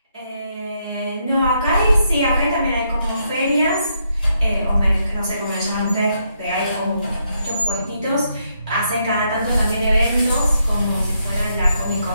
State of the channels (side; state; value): both; inverted; correlation -0.77